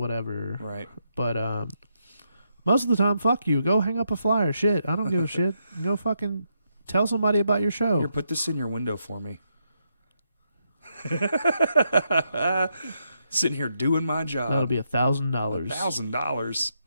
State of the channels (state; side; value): inverted; both; correlation -0.80